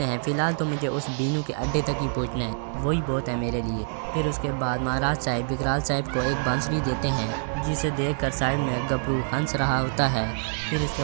हैं फ़िलहाल तो मुझे उस बीनू के अड्डे तक ही पहुंचना है, वही बहुत है मेरे लिए। फिर उसके बाद महाराज साहब विकराल साहब को एक बांसुरी देते हैं जिसे देखकर साइड में गबरू हंस रहा होता है। फिर इसके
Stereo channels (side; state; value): left; silent; digital silence